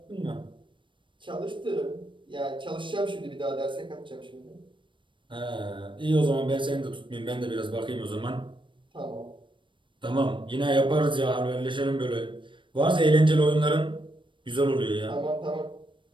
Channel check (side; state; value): left; late; 0.24 ms